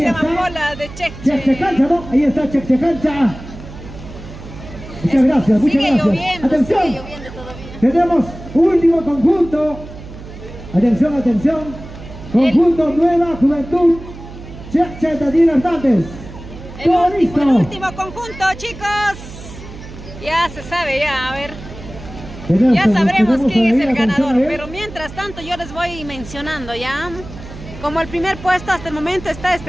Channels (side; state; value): right; noise; hum, 14 dB below the sound